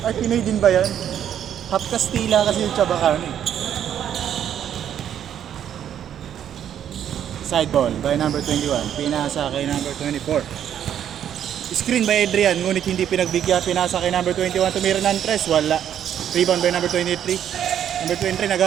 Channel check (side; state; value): left; quieter; 9.8 dB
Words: Ay, Pinoy din ba yan? Half Kastila kasi yung tsabakano eh. Side ball by number 21. Pinasa kay number 24. Screen by Adrian. Ngunit hindi pinagbigyan. Pinasa kay number 21. Tumira ng 3. Wala. Rebound by number 23. Number 23